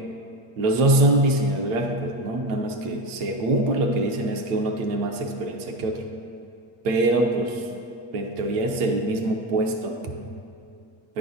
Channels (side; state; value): left; late; 8.6 ms